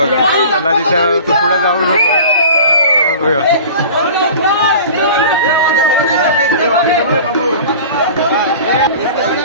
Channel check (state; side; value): inverted; both; correlation -0.40